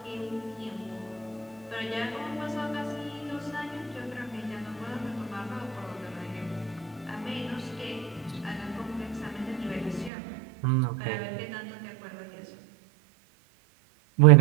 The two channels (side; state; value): left; drops out; at 10.1 s